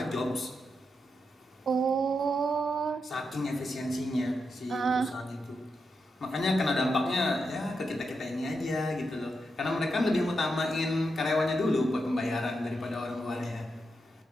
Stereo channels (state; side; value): normal; both; correlation 0.85